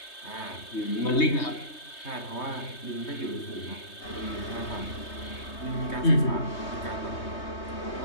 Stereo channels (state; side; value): late; right; 3.2 ms